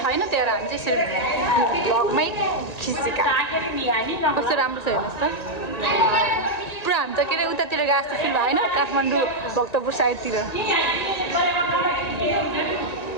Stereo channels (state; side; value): late; right; 1.9 ms